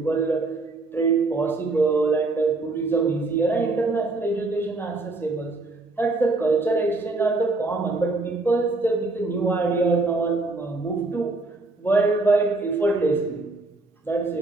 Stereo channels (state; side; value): quieter; left; 3.3 dB